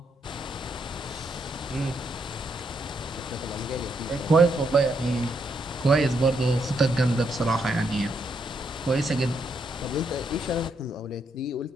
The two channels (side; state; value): both; normal; correlation 0.77